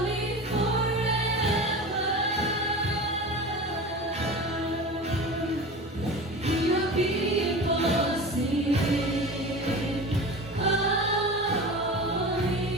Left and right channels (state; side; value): normal; both; correlation 0.32